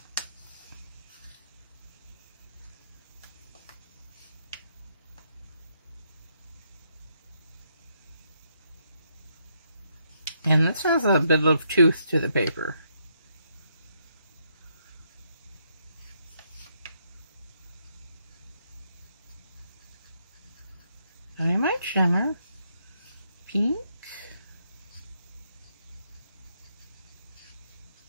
And this has a bit of tooth to the paper. Diamine Shimmer, pink,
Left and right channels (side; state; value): both; inverted; correlation -0.76